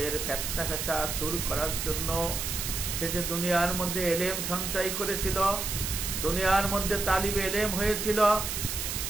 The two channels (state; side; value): noise; right; hiss, 3 dB below the sound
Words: ফিতনা ফাসাদ দূর করার জন্য সে যে দুনিয়ার মধ্যে ইলম সঞ্চয় করেছিল, দুনিয়ার মধ্যে তালিবে ইলম হয়েছিল,